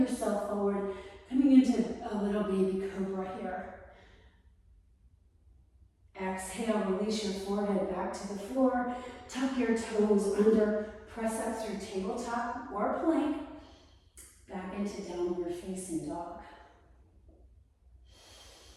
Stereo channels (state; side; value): identical; both; correlation 1.00